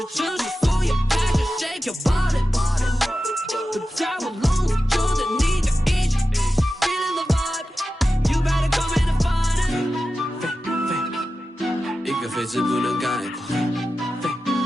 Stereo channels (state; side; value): normal; both; correlation 0.93